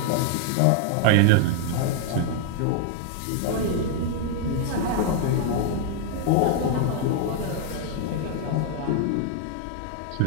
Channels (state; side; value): different; both; correlation 0.00